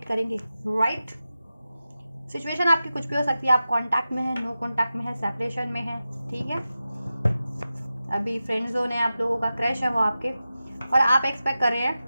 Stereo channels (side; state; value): both; inverted; correlation -0.93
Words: करेंगे? राइट। सिचुएशन आपकी कुछ भी हो सकती है। आप कांटेक्ट में हैं, नो कांटेक्ट में है, सेपरेशन में है, ठीक है, अभी फ्रेंड जोन है, आप लोगों का क्रश है वो आपके, और आप एक्सपेक्ट कर रहे